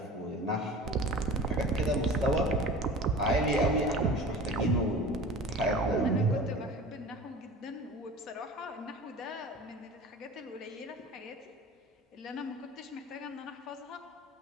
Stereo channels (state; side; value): normal; both; correlation 0.38